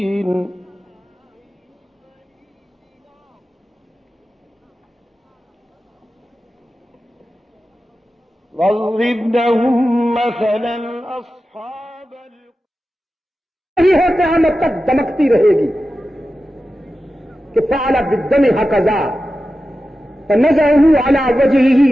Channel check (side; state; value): both; normal; correlation 0.93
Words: واضرب لهم مثلا أصحاب یہ ہے قیامت تک دمکتی رہے گی، کہ فعل بالدم هكذا فنزعه على